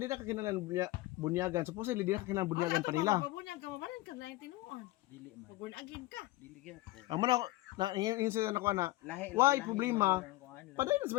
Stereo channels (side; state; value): right; quieter; 18.4 dB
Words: na kakinalan bunyagan. Supposedly di na kakinalan bunyagan pa nila. Bunyag ka mabalan ka lain tinuon. Dili man. Pabun agin ka. Dili gyud. Amo na na insa na ko na. Lahi. Why problema? Paday na sa